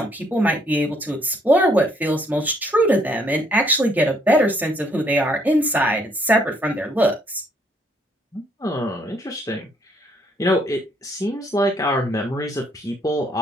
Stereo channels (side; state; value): both; normal; correlation 0.68